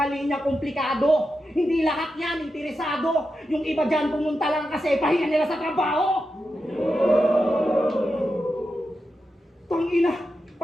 linya komplikado. Hindi lahat yan interesado. Yung iba dyan pumunta lang kasi pahinga nila sa trabaho. Tangina!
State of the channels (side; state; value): both; normal; correlation 0.89